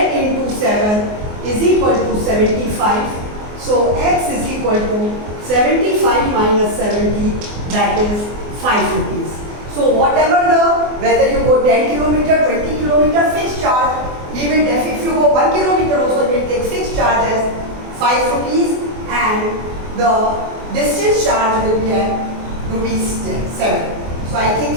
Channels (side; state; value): left; late; 24 ms